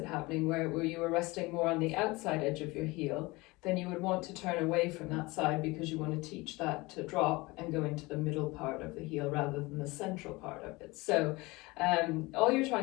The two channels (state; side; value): quieter; right; 22.9 dB